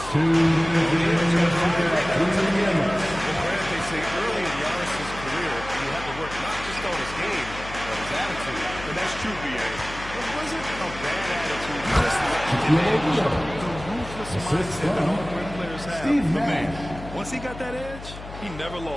They say early in Giannis's career, he had to work not just on his game, but his attitude. And that's true, B.A. It wasn't a bad attitude. Just the ruthless mindset that all great players have. For me, once he got that edge, he never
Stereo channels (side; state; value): left; noise; hum, 13 dB below the sound